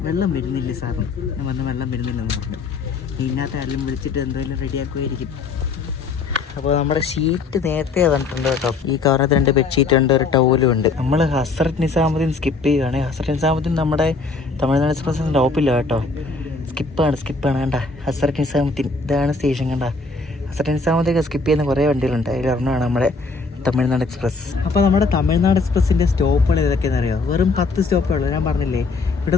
വെള്ളം വരുന്നില്ല സാറിന്. ഞാൻ പറഞ്ഞു വെള്ളം വരുന്നില്ലെന്ന് പറഞ്ഞു. ഇതിനകത്ത് ആരെങ്കിലും വിളിച്ചിട്ട് എന്തെങ്കിലും റെഡിയാക്കുമായിരിക്കും. അപ്പോൾ നമ്മുടെ ഷീറ്റ് നേരത്തെ വന്നിട്ടുണ്ട് കേട്ടോ. ഈ കവറിനകത്ത് 2 ബെഡ്ഷീറ്റ് ഉണ്ട്, ഒരു ടവലും ഉണ്ട്. നമ്മൾ ഹസ്രത്ത് നിസാമുദ്ദീൻ സ്കിപ്പ് ചെയ്യുകയാണ്. ഹസ്രത്ത് നിസാമുദ്ദീൻ നമ്മുടെ തമിഴ്നാട് എക്സ്പ്രസിൻ്റെ ടോപ്പില്ല കേട്ടോ. സ്കിപ്പാണ് കണ്ട. ഹസ്രത്ത് നിസാമുദ്ദീൻ ഇതാണ് സ്റ്റേഷൻ കണ്ട. ഹസ്രത്ത് നിസാമുദ്ദീൻ സ്കിപ്പ് ചെയ്യുന്ന കുറേ വണ്ടികളുണ്ട്, അതിലൊരെണ്ണമാണ് നമ്മുടെ തമിഴ്നാട് എക്സ്പ്രസ്. അപ്പോൾ നമ്മുടെ തമിഴ്നാട് എക്സ്പ്രസിൻ്റെ സ്റ്റോപ്പുകൾ ഏതൊക്കെയാണെന്ന് അറിയാം? വെറും 10 സ്റ്റോപ്പേ ഉള്ളൂ. ഞാൻ പറഞ്ഞില്ലേ, ഇവിടെ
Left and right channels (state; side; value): quieter; right; 4.0 dB